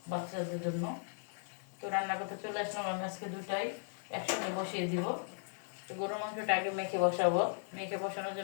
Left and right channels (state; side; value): silent; right; 53 dB below the other